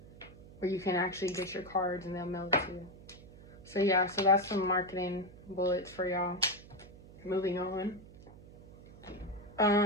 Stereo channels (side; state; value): right; noise; hum, 19 dB below the sound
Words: where you can actually get your cards and they'll mail it to you. So yeah, so that's some marketing bullets for y'all. Moving on.